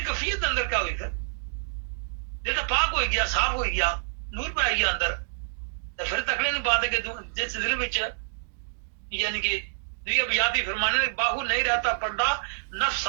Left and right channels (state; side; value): silent; left; digital silence